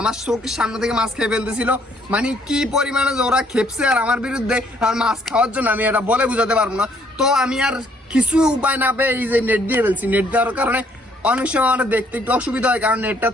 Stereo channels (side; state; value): both; normal; correlation 0.66